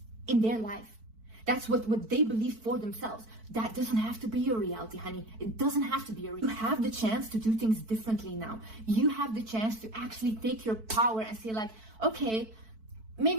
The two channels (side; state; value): left; late; 4.5 ms